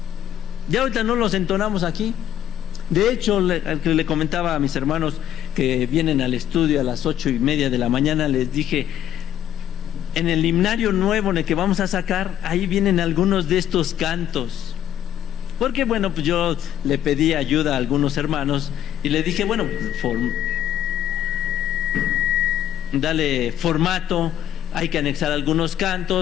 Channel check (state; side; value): quieter; right; 10.6 dB